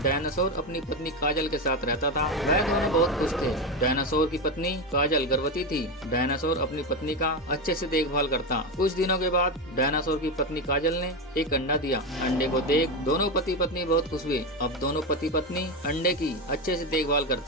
डायनासोर अपनी पत्नी काजल के साथ रहता था। वह दोनों बहुत खुश थे। डायनासोर की पत्नी काजल गर्भवती थी। डायनासोर अपनी पत्नी का अच्छे से देखभाल करता। कुछ दिनों के बाद डायनासोर की पत्नी काजल ने एक अंडा दिया। अंडे को देख दोनों पति पत्नी बहुत खुश हुए। अब दोनों पति पत्नी अंडे की अच्छे से देखभाल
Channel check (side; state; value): both; normal; correlation 0.13